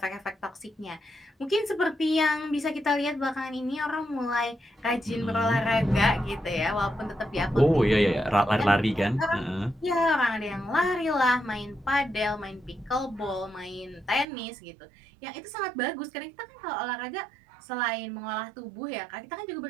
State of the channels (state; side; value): drops out; left; at 14.2 s